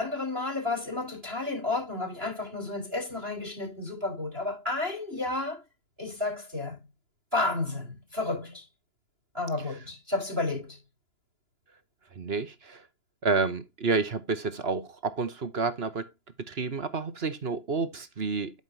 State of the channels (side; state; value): left; late; 2.9 ms